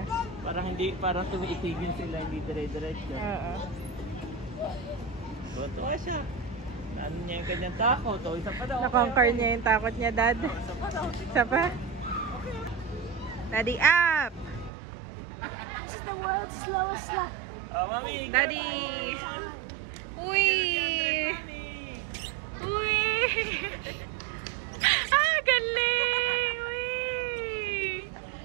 Parang tumiitigin sila, hindi dire-diretso. Tuwa siya. Ano niya yung kanyang takot? O, isa pa daw. Na-conquer niya yung takot niya, Dad. Isa pa daw. Isa pa? Daddy, up! This is the world's slowest slide. Mami, Daddy! Uy!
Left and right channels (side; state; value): left; drops out; at 14.7 s